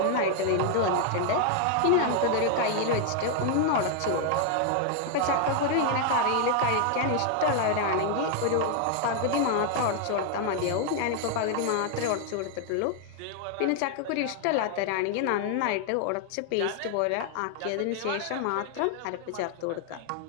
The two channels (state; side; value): different; both; correlation 0.00